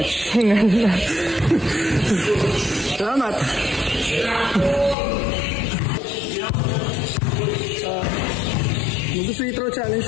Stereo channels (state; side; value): drops out; right; at 5.0 s